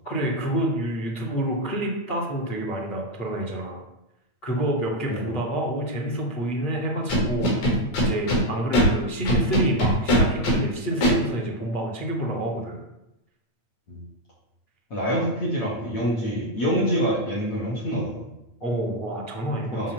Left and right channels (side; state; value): right; late; 8.8 ms